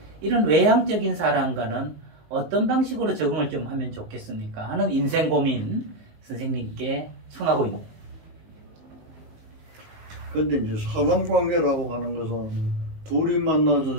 이런 외향적인 사람과는 어떤 방식으로 적응을 좀 하면 좋겠습니까 하는 인생 고민 선생님께 청하고 있네요. 근데 이제 사람 관계라고 하는 것은 둘이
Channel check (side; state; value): left; late; 19 ms